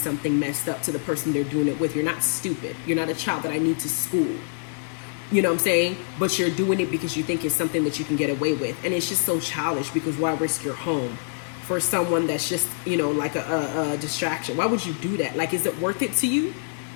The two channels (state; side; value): silent; right; digital silence